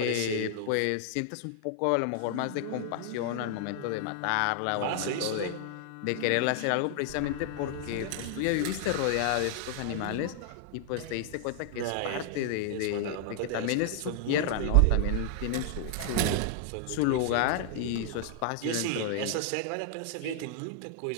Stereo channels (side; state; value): both; different; correlation 0.00